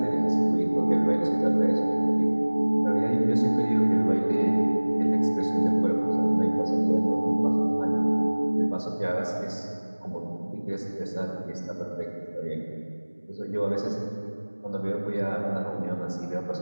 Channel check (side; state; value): both; inverted; correlation -1.00